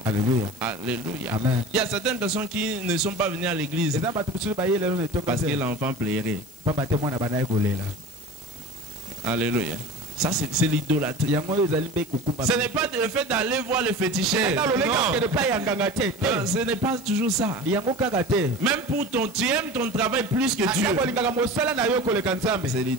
Alléluia. Alléluia. Il y a certaines personnes qui ne sont pas venues à l'église parce que l'enfant plairait. Alléluia. Ça, c'est l'idolâtrie. Ce n'est pas le fait d'aller voir le féticheur. Non. Ce n'est pas toujours ça. Même pour tu aimes ton travail plus que Dieu. C'est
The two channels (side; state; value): left; noise; hiss, 23 dB below the sound